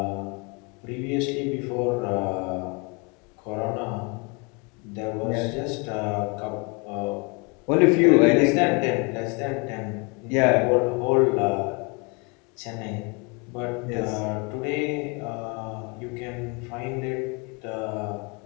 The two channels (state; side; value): quieter; right; 30.7 dB